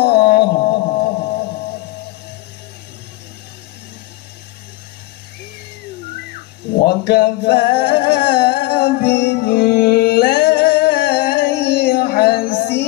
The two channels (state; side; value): quieter; right; 20.0 dB